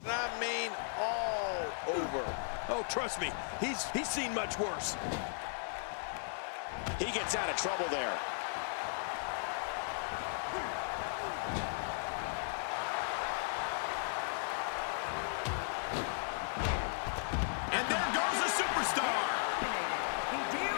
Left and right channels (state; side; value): silent; right; 54 dB below the other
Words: I mean, all over. Oh, trust me, he's seen much worse. He gets out of trouble there. And there goes a superstar. Hideo